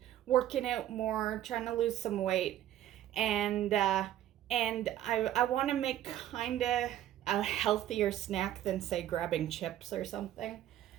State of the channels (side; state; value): left; quieter; 12.4 dB